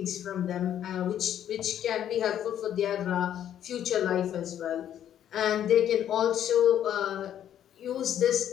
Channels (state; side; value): quieter; right; 10.4 dB